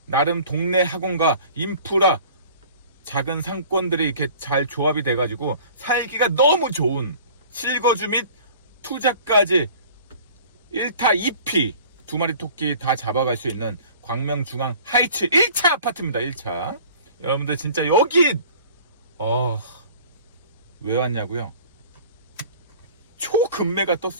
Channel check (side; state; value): both; inverted; correlation -0.47